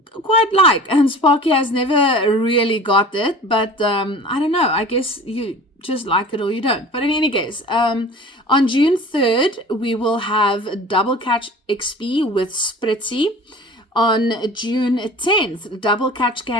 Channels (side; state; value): both; normal; correlation 0.41